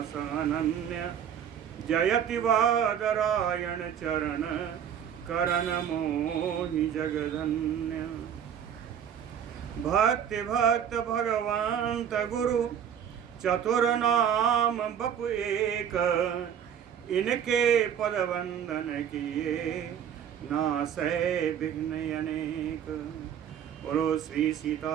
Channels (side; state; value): left; quieter; 8.8 dB